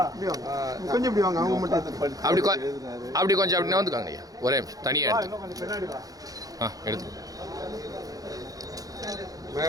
கொஞ்சம் இப்படி வாங்க. அவங்க மட்டும் அப்படி கொஞ்சம் அப்படி வந்துக்காங்க ஐயா. ஒரே நிமிஷம் தனியா எடுத்து எடுத்து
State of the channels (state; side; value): late; left; 0.17 ms